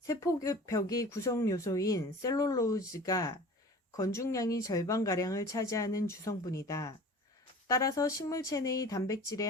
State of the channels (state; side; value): normal; both; correlation 0.41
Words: 구성 요소인 셀룰로즈가 건중량이 절반가량을 차지하는 주성분이다. 따라서 식물체 내의 단백질의